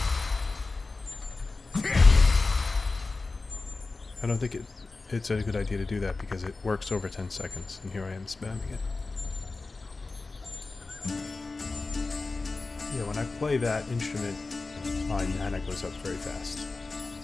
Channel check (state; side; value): quieter; right; 3.7 dB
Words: I don't think it's a good idea to do that because it works over 10 seconds, and here I am spamming it. Yeah, when I play that instrument, my mana goes up very fast.